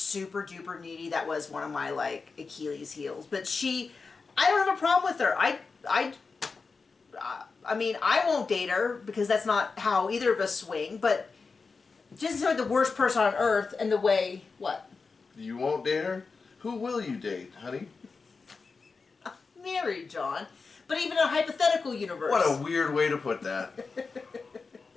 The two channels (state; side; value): quieter; right; 4.6 dB